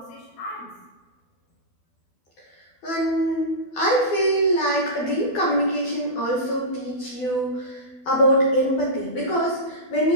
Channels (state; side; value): late; right; 12 ms